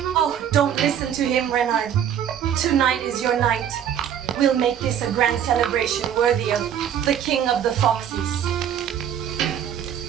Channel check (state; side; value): quieter; left; 9.4 dB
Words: Oh, don't listen to him, Renard. Tonight is your night. We'll make this a grand celebration worthy of the king of the foxes.